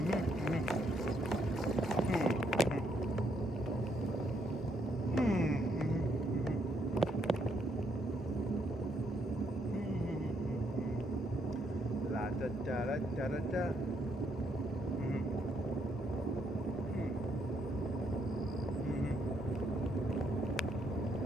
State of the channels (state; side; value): normal; both; correlation 0.74